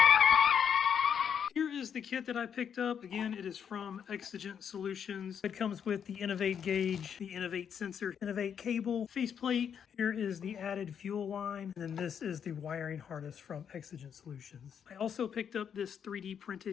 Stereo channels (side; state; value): right; quieter; 7.9 dB